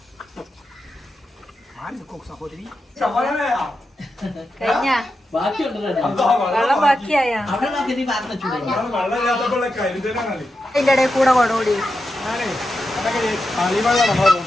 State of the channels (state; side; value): normal; both; correlation 0.88